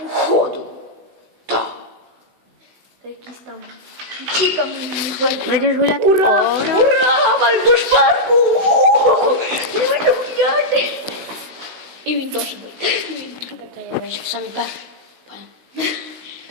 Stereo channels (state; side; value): late; left; 16 ms